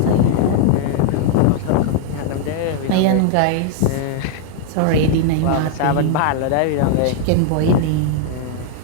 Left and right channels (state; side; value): different; both; correlation 0.00